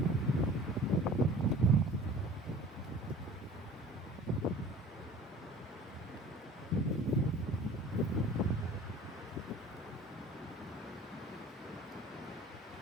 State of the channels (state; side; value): normal; both; correlation 0.45